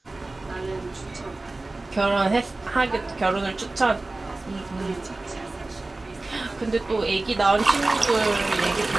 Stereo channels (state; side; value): quieter; left; 3.1 dB